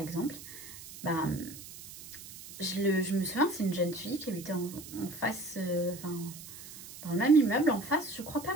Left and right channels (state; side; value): noise; right; hiss, 14 dB below the sound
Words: je me souviens, c'est une jeune fille qui habitait en face, dans le même immeuble en face, je crois pas